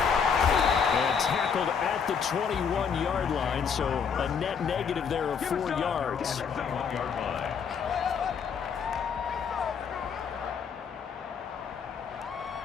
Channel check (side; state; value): right; quieter; 6.6 dB